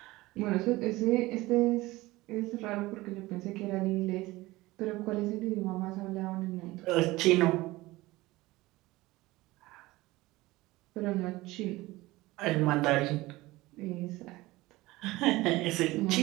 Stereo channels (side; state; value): left; quieter; 19.6 dB